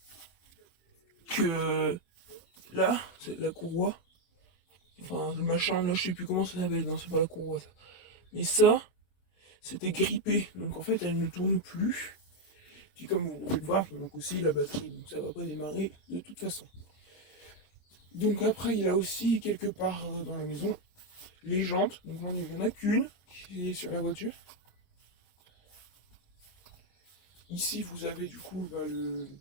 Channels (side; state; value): right; late; 25 ms